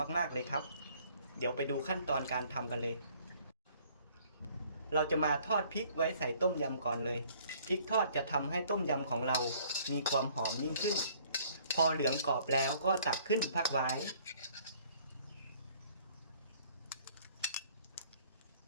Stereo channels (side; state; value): both; inverted; correlation -0.59